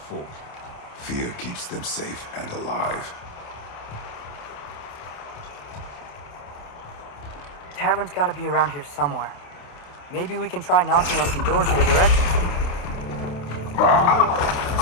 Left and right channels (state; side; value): late; right; 28 ms